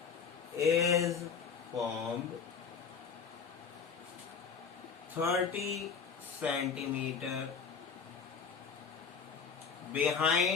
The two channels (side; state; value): right; quieter; 6.0 dB